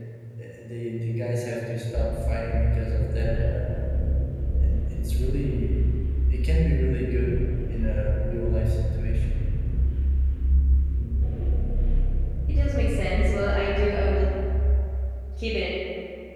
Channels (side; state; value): both; identical; correlation 1.00